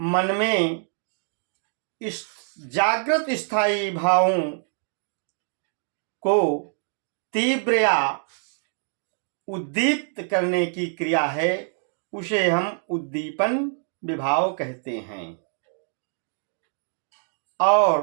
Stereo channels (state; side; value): silent; left; 61 dB below the other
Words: में इस जागृत स्थायी भावों को तीव्र या उद्दीप्त करने की क्रिया है, उसे हम उद्दीपन विभाव कहते हैं।